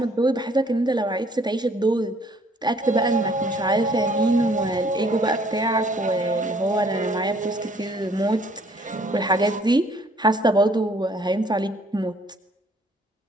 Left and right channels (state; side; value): normal; both; correlation 0.61